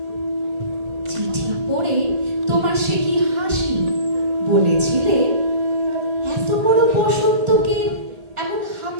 চিঠি পড়ে তোমার সে কি হাসি, বলেছিলে এত বড় বসন্তকে এমন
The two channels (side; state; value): left; late; 1.8 ms